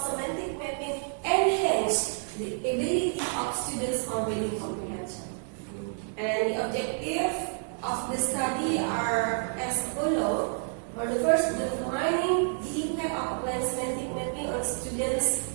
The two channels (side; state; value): left; silent; 58 dB below the other